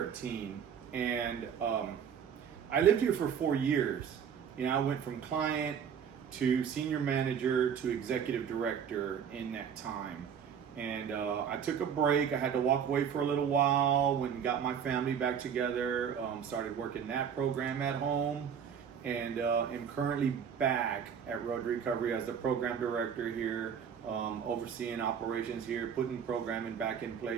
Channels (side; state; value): left; quieter; 7.7 dB